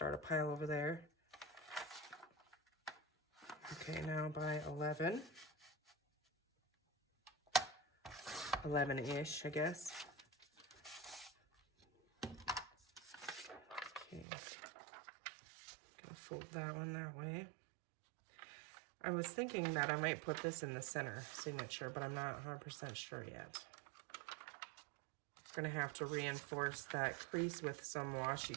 a pile over there. Okay, now by 11. 11-ish, I guess. Okay, gonna fold that one that way. I was thinking that I might put this in the center signature, but I'm not 100% sure yet. Gonna have to reinforce that crease with some washi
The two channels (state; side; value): drops out; left; at 14.2 s